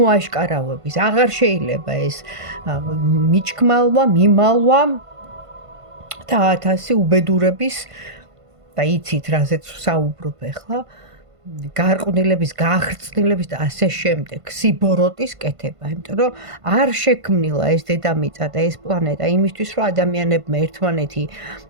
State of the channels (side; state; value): left; late; 1.5 ms